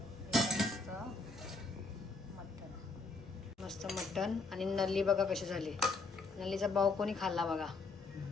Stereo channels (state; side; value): quieter; right; 3.8 dB